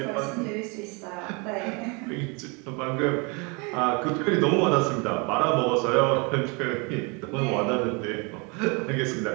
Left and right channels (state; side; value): quieter; left; 30.7 dB